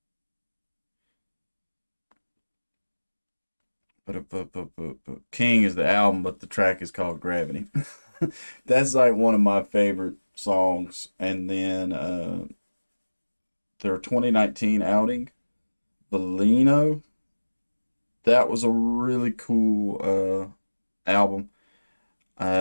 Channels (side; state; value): both; inverted; correlation -1.00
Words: King is the album, but the track is called Gravity. That's like one of my favorite songs. And then their 2019 outing, Bellino. That was a really cool album.